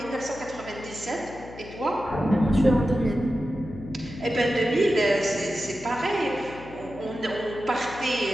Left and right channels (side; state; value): left; noise; hum, 16 dB below the sound